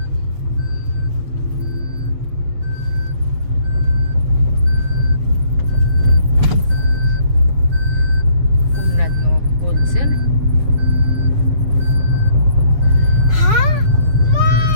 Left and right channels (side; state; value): left; late; 7.4 ms